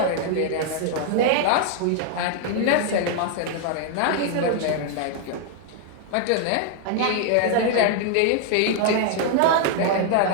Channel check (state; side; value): different; both; correlation 0.00